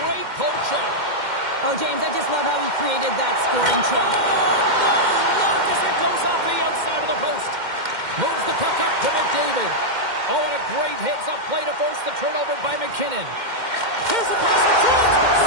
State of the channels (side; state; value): left; late; 2.1 ms